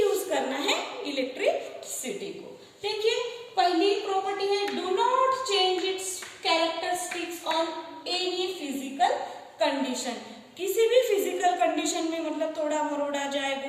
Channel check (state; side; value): identical; both; correlation 1.00